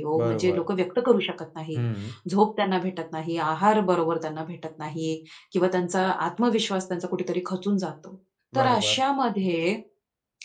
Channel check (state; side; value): identical; both; correlation 1.00